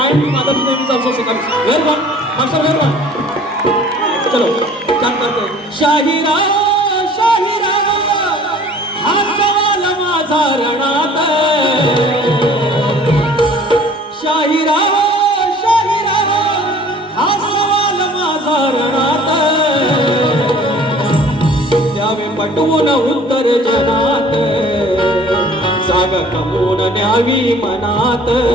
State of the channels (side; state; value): both; normal; correlation 0.50